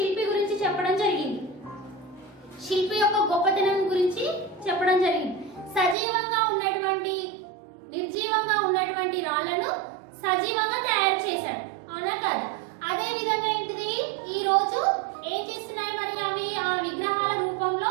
గురించి చెప్పడం జరిగింది. శిల్పి యొక్క గొప్పతనం గురించి చెప్పడం జరిగింది. సజీవంగా ఉన్నటువంటి నిర్జీవంగా ఉన్నటువంటి రాళ్లను సజీవంగా తయారు చేశాడు, అవునా కాదా? అదే విధంగా ఏంటిది ఈ రోజు ఏం చేస్తున్నాయి? మరి అవి ఆ విగ్రహాల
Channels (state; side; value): drops out; left; at 6.0 s